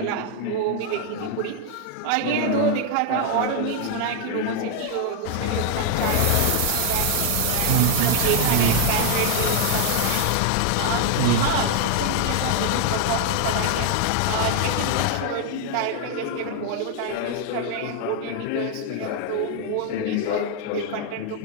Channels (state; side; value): different; both; correlation 0.00